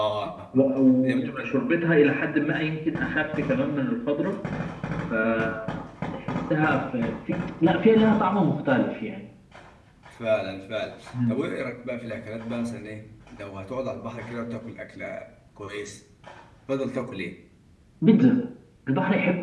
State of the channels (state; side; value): identical; both; correlation 1.00